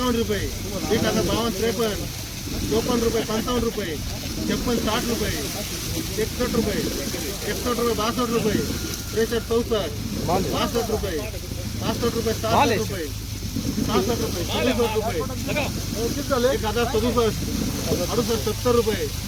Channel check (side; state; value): both; identical; correlation 1.00